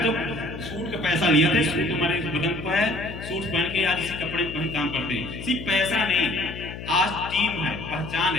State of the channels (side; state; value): left; noise; hum, 10 dB below the sound